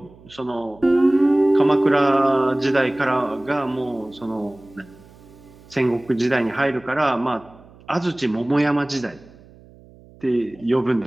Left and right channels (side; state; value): right; noise; hum, 24 dB below the sound